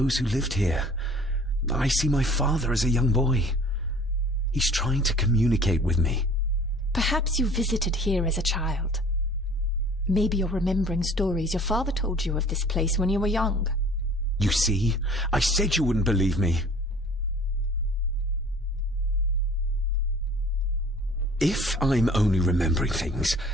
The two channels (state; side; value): normal; both; correlation 0.49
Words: who lived here. I see my father as a young boy. He's trying to communicate with me. Perhaps you visited here as a child. Maybe you're remembering stories your father told you of this place when you were young. You see? I said you wouldn't believe me. If I'm only remembering things,